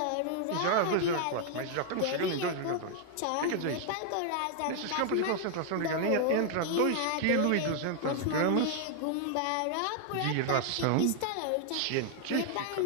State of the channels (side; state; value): both; different; correlation 0.00